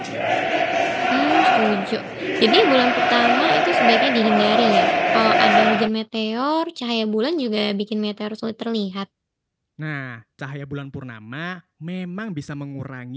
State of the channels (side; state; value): both; identical; correlation 1.00